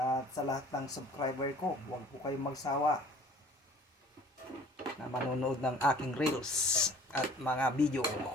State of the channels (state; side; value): normal; both; correlation 0.50